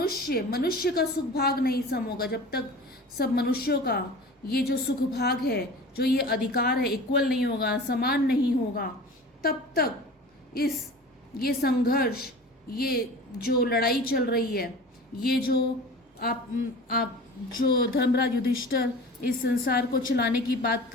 का सुख भाग नहीं सम होगा, जब तक सब मनुष्यों का ये जो सुख भाग है, जो ये अधिकार है, इक्वल नहीं होगा, समान नहीं होगा, तब तक ये संघर्ष, ये जो लड़ाई चल रही है, ये जो आप जो धर्मराज युधिष्ठिर इस संसार को चलाने की बात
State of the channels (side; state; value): both; normal; correlation 0.38